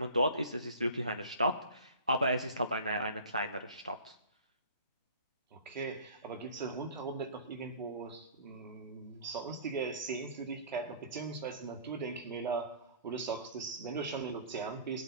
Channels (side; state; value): both; inverted; correlation -0.45